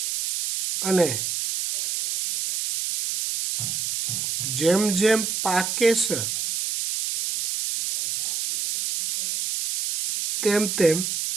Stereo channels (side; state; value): right; noise; hiss, 2 dB below the sound